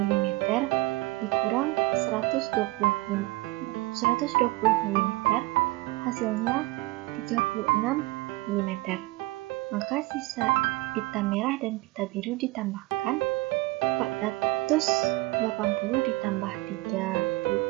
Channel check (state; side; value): quieter; left; 20.8 dB